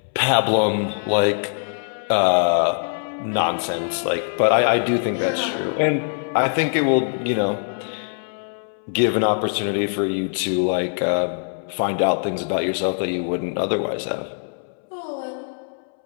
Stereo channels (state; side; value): silent; right; 64 dB below the other